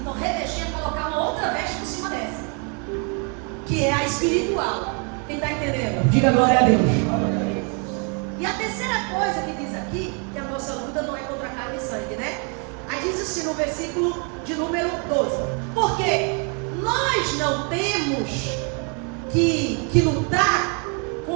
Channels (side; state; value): left; quieter; 37.4 dB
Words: revestir é colocar uma outra veste por cima dessa, que é a espiritual. Quem está entendendo? Diga glória a Deus. E a terceira coisa que diz aqui, que a nossa luta não é contra carne e sangue, né? Aí diz assim no versículo de número 12. Porque nós não temos que lutar